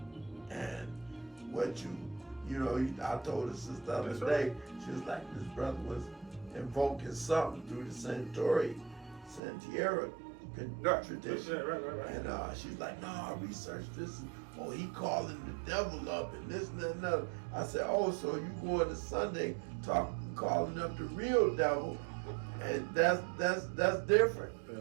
And what you know, I told her sister the other day, she was like, this brother was invoking something through the Santiera tradition. Right. And she's like, no, I researched this. Oh, he calling the devil up and this and that and another. I said, oh, so you going to Sunday calling up the real devil, and that's different.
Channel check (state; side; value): drops out; left; at 9.4 s